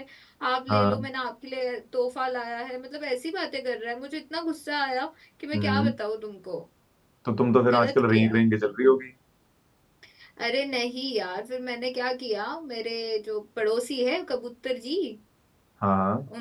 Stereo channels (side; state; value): both; identical; correlation 1.00